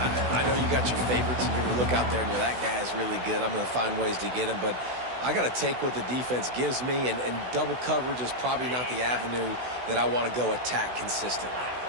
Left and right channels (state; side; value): late; left; 16 ms